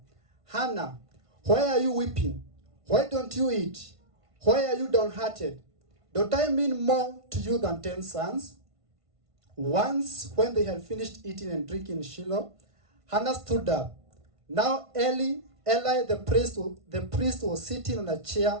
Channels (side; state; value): left; late; 1.5 ms